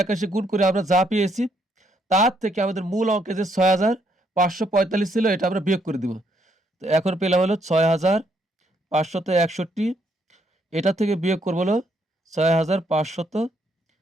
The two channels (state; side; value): normal; both; correlation 0.72